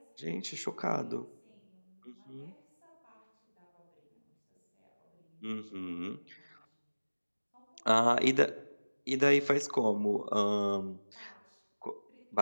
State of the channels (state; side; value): inverted; both; correlation -1.00